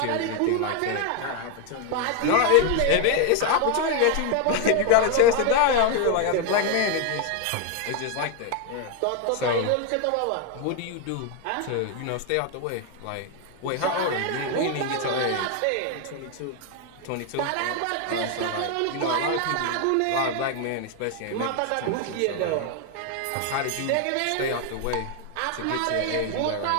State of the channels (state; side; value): different; both; correlation 0.01